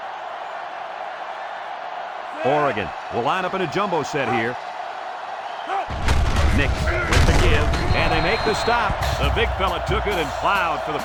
Oregon will line up in a jumbo set here. Nix with the give, and they make the stop. The big fella took it and plowed for the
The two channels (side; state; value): both; identical; correlation 1.00